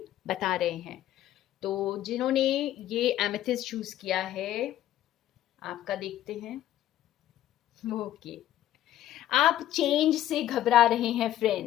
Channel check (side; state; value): right; quieter; 12.8 dB